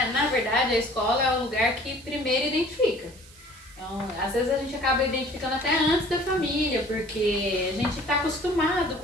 na verdade a escola é o lugar que primeiro identifica. Então, às vezes a gente acaba identificando até antes da família, porque a gente está acostumado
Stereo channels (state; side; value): noise; right; hiss, 23 dB below the sound